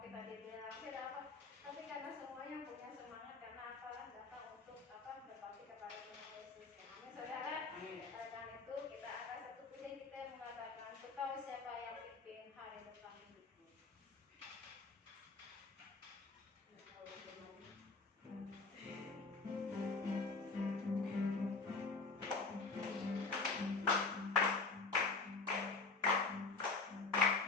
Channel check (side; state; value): right; quieter; 4.0 dB